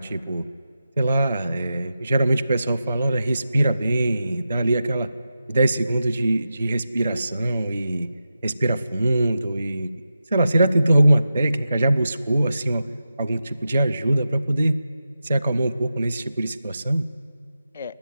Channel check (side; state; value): both; inverted; correlation -0.90